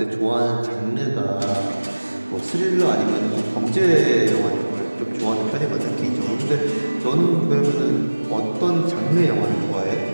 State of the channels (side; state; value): both; inverted; correlation -1.00